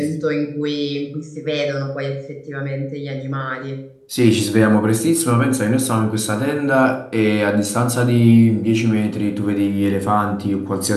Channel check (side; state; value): both; identical; correlation 1.00